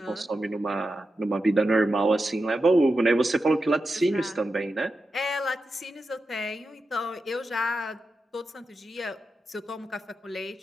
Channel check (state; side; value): normal; both; correlation 0.90